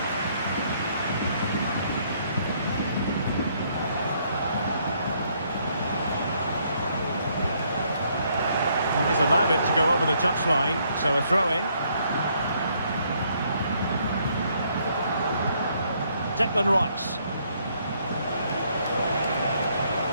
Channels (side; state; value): both; inverted; correlation -0.69